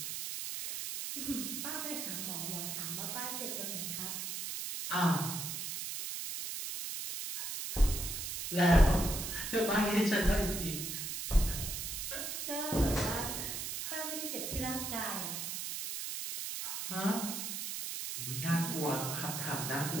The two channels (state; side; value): noise; right; hiss, 4 dB below the sound